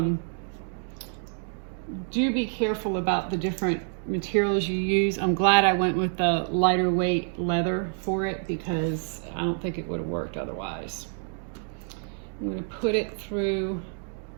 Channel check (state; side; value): silent; left; 60 dB below the other